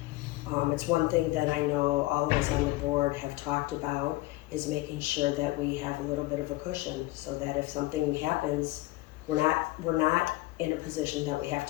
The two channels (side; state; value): right; quieter; 19.4 dB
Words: It's one thing that I know all of us on the board have talked about, is making sure that we have a little bit of a cushion, so that if something happens, we're not in a position that we have